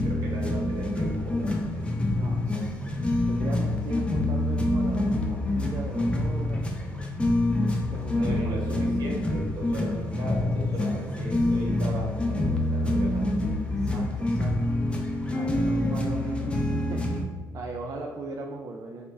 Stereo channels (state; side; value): normal; both; correlation 0.82